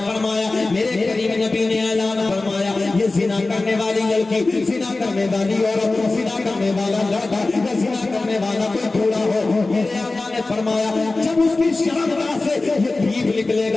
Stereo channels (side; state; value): right; quieter; 3.3 dB